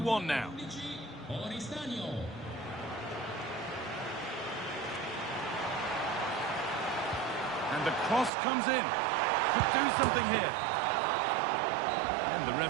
now. And the cross comes in. Could do something here. And the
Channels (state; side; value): drops out; left; at 8.3 s